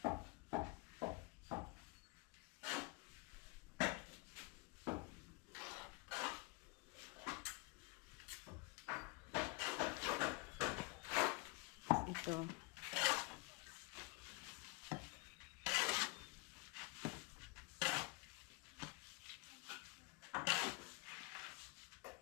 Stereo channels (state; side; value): quieter; right; 27.8 dB